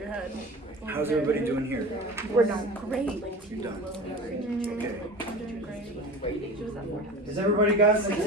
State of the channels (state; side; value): normal; both; correlation 0.35